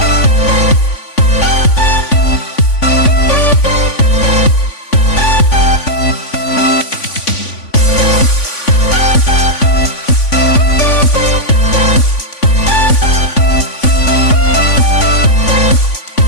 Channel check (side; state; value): right; late; 3.5 ms